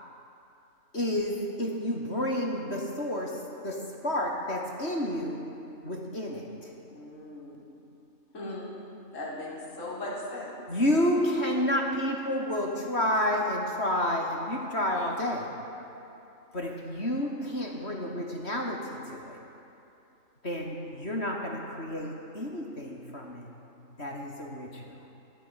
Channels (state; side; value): late; right; 3.1 ms